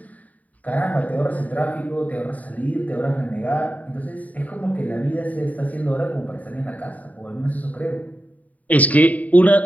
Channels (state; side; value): late; right; 0.072 ms